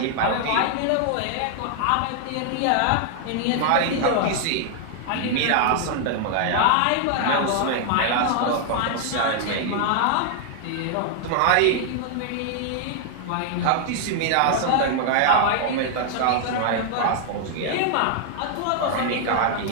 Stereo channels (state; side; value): different; both; correlation 0.00